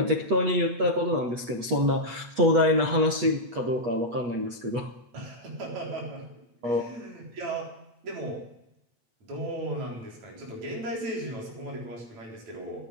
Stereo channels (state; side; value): late; left; 8.3 ms